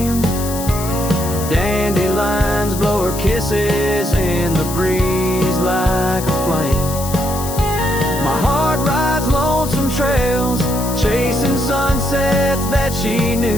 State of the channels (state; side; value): noise; left; hiss, 9 dB below the sound